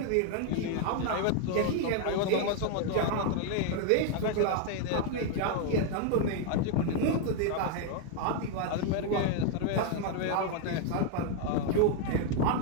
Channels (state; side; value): different; both; correlation 0.00